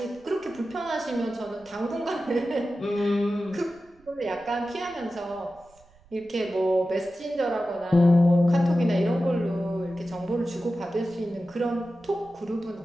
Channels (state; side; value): noise; right; rumble, 29 dB below the sound